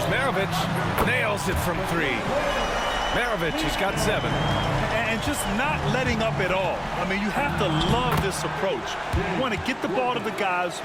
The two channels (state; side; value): identical; both; correlation 1.00